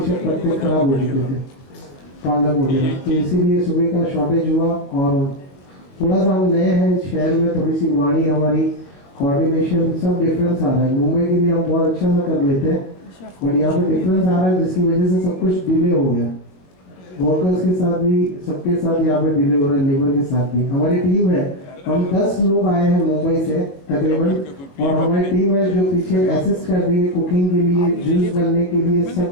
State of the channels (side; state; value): right; late; 21 ms